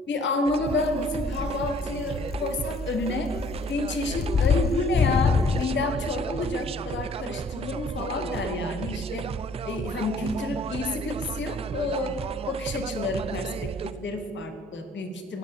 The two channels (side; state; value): both; normal; correlation 0.57